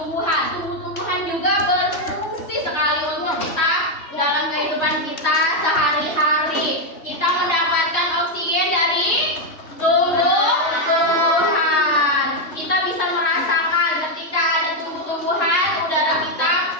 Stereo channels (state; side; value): late; right; 3.1 ms